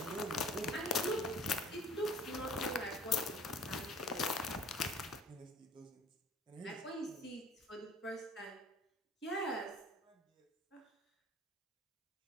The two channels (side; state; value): both; normal; correlation 0.48